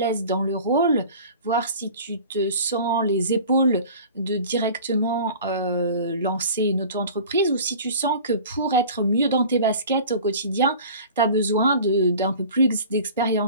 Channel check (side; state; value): both; inverted; correlation -0.42